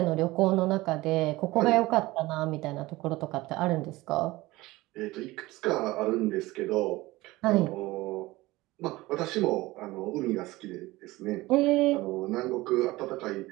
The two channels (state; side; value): quieter; left; 19.6 dB